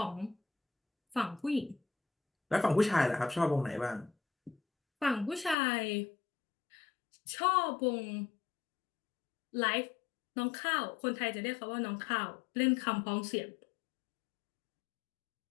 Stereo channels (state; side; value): drops out; right; at 5.6 s